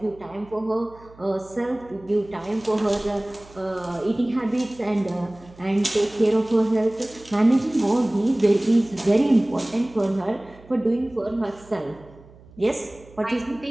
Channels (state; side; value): noise; right; hum, 23 dB below the sound